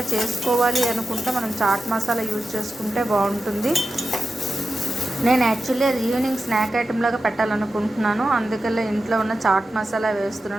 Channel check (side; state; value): both; normal; correlation 0.91